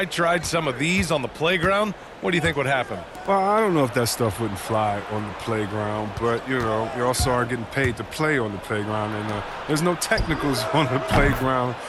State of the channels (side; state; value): both; identical; correlation 1.00